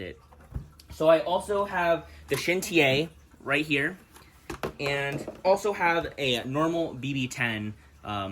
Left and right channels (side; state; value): both; identical; correlation 1.00